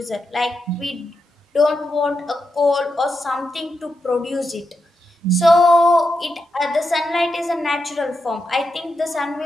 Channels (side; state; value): both; normal; correlation 0.86